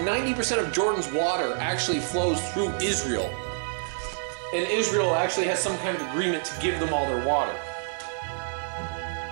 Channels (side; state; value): left; silent; digital silence